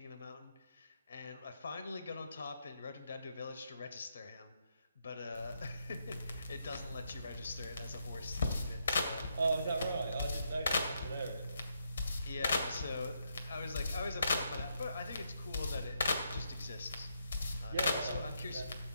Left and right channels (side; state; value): both; inverted; correlation -0.79